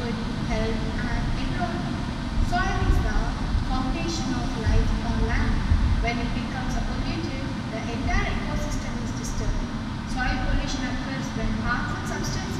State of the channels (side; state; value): both; identical; correlation 1.00